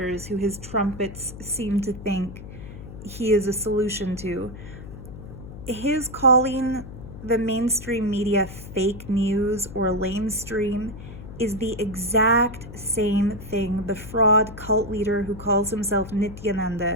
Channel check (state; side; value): noise; left; hum, 13 dB below the sound